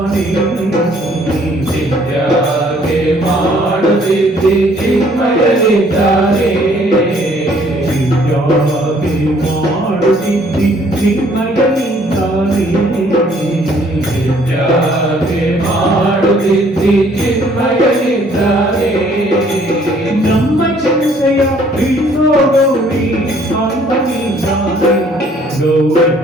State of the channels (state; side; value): normal; both; correlation 0.61